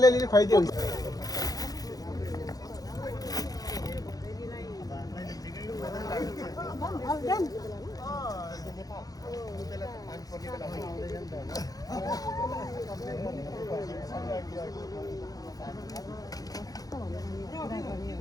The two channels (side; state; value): right; late; 0.18 ms